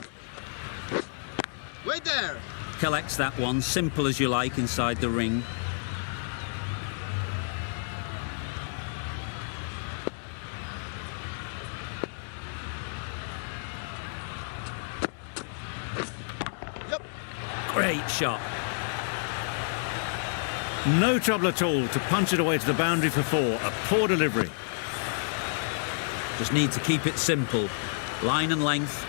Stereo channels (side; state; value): right; silent; 57 dB below the other